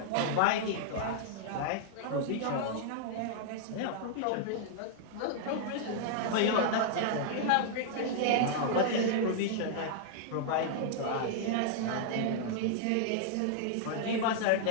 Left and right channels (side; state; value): both; different; correlation -0.01